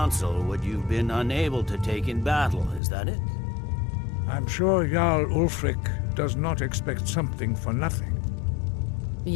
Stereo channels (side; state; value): right; drops out; at 2.8 s